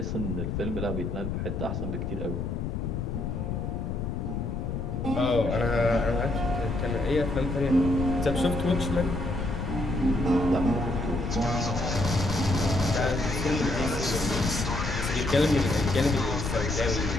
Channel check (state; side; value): noise; left; rumble, 2 dB below the sound